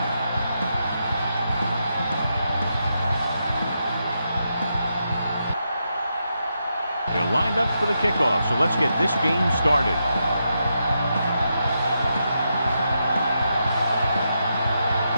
They're lined up for the kickoff, so let's get this game started.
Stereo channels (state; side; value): inverted; both; correlation -0.84